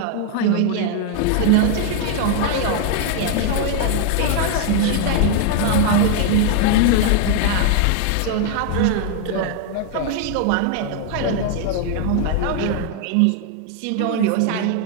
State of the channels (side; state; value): both; different; correlation 0.00